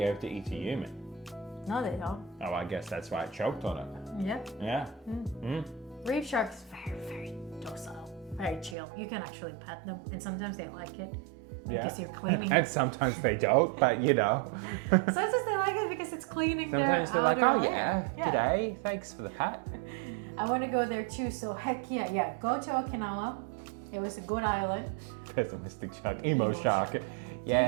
able to eat a human. No, they don't. Oh, I guess that's why it choked on it. Yeah. Yeah. Reef sharks very, very docile, very chill. You can actually pet them, and sometimes they like it. because you're cleaning. And sometimes they don't, but you know. Sometimes they like it because it's cleaning Sometimes their they're like, outer oh layer. yeah, today, thanks for the hat. I want to go there too, so heck yeah, go to Okinawa. It was a good island. Pessimistic shark, emo Emo shark. shark. Yeah.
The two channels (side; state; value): left; drops out; at 8.8 s